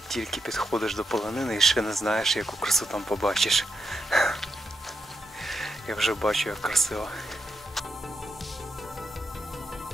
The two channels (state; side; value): normal; both; correlation 0.85